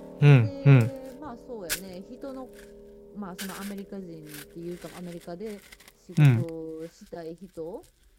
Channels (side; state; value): both; identical; correlation 1.00